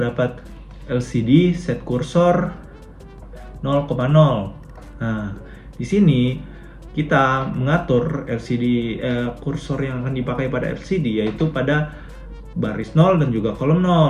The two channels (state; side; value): identical; both; correlation 1.00